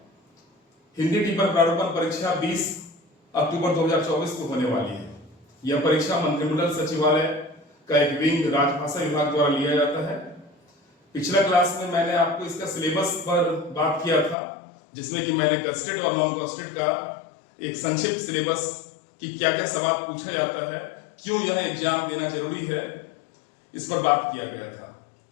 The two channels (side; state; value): right; drops out; at 14.4 s